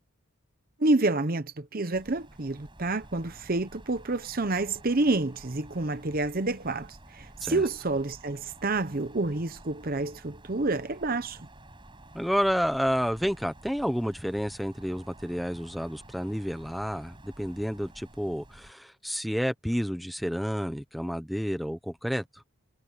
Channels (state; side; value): normal; both; correlation 0.63